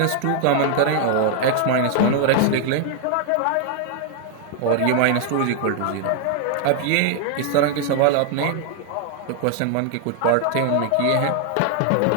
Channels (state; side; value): different; both; correlation 0.00